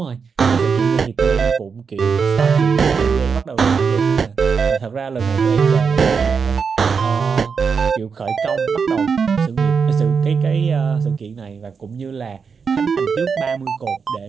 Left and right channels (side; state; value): left; quieter; 5.7 dB